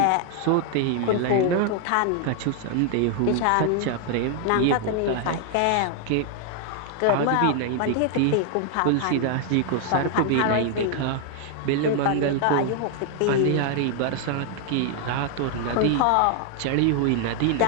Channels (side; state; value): both; different; correlation 0.00